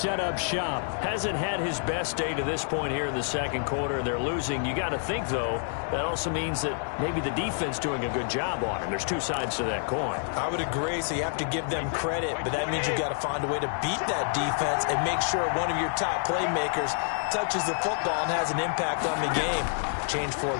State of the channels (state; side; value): silent; right; 59 dB below the other